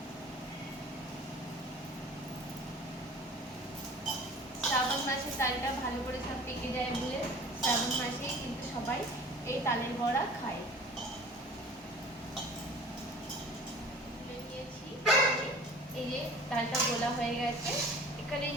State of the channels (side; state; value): both; normal; correlation 0.44